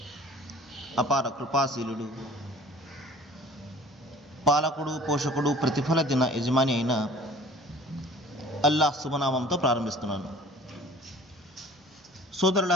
అపార కృపాశీలుడు, పాలకుడు, పోషకుడు, ప్రతిఫల దిన యజమాని అయిన అల్లాహ్ శుభనామంతో ప్రారంభిస్తున్నాను.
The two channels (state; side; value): normal; both; correlation 0.47